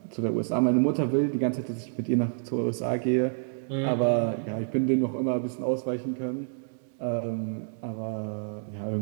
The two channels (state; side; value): silent; left; digital silence